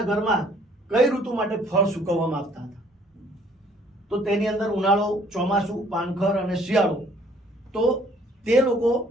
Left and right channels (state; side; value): normal; both; correlation 0.60